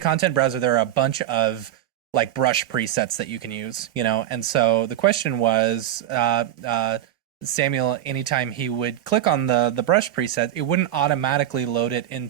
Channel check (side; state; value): left; quieter; 12.0 dB